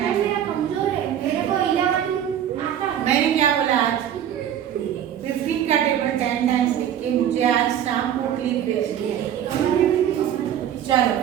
टाइम्स। मेरा कमजोर है, मेरे को 11 आता है। मैंने क्या बोला? आज 15 का टेबल 10 टाइम्स लिख के मुझे आज शाम को क्लिप भेजनी है। चलो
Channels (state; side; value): quieter; left; 10.0 dB